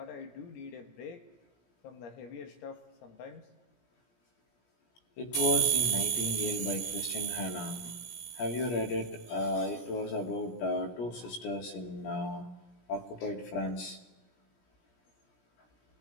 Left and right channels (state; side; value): late; right; 17 ms